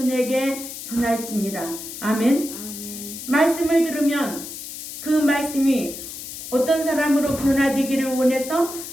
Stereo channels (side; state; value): left; noise; hiss, 10 dB below the sound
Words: 전할지니라. 아멘. 말씀을 들으면 그 말씀이 어떤 사람으로 변화되기를 원해서